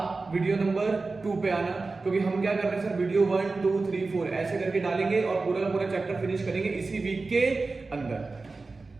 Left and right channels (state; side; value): quieter; left; 3.8 dB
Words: वीडियो नंबर 2 पे आना, क्योंकि हम क्या कर रहे हैं सर, वीडियो 1 2 3 4 ऐसे करके डालेंगे और पूरा का पूरा चैप्टर फिनिश करेंगे इसी वीक के अंदर।